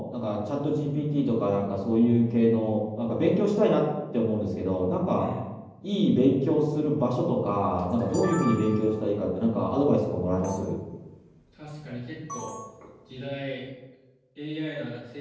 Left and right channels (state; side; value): identical; both; correlation 1.00